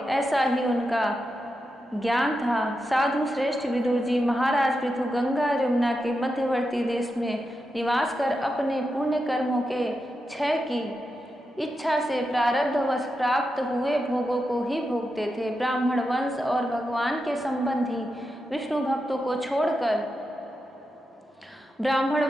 ऐसा ही उनका ज्ञान था। साधु श्रेष्ठ विदुर जी, महाराज पृथु गंगा यमुना के मध्यवर्ती देश में निवास कर अपने पुण्य कर्मों के क्षय की इच्छा से प्रारब्धवश प्राप्त हुए भोगों को ही भोगते थे। ब्राह्मण वंश और भगवान के संबंधी विष्णु भक्तों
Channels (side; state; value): both; normal; correlation 0.88